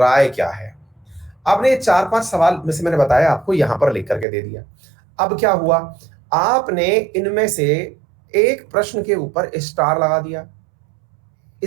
क्या है। आपने ये 4-5 सवाल में से मैंने बताया आपको यहां पर लिख करके दे दिया। अब क्या हुआ, आपने इनमें से एक प्रश्न के ऊपर स्टार लगा दिया,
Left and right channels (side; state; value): left; drops out; at 4.2 s